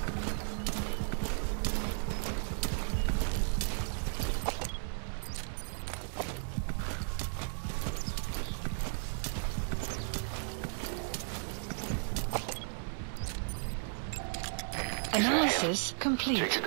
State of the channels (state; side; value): silent; left; 55 dB below the other